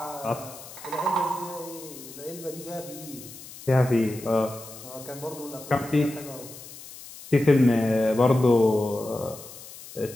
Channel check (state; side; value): noise; left; hiss, 16 dB below the sound